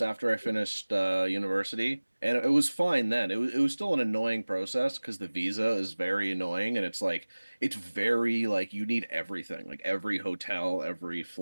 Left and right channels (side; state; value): both; inverted; correlation -1.00